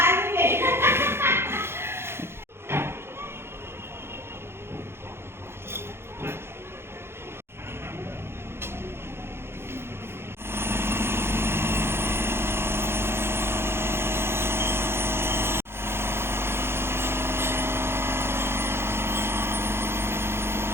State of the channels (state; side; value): late; left; 0.12 ms